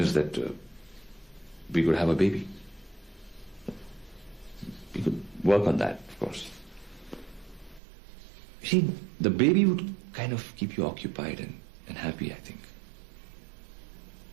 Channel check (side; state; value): left; drops out; at 7.8 s